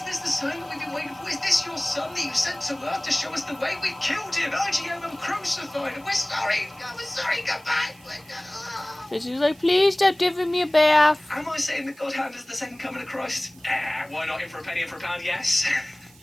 this the sign that we've been waiting for? Is this your son that you sent to Earth to show us the way? We killed him! IGM and crucified him! We're sorry! We're sorry! Come back! Bitsy's like, please stop giving me a bath. Am I saying that God Hand is the second coming of Christ? Why not in for a penny, in for a pound? Yes.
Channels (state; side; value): noise; right; hiss, 26 dB below the sound